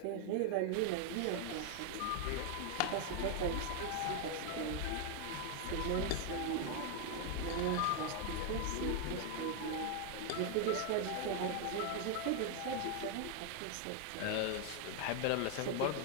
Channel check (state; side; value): different; both; correlation 0.00